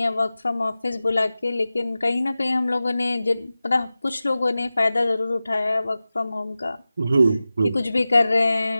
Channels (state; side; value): inverted; both; correlation -0.95